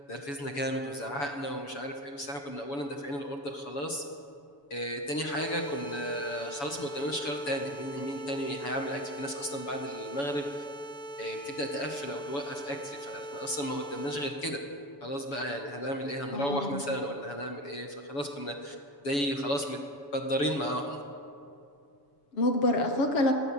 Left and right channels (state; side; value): late; right; 7.0 ms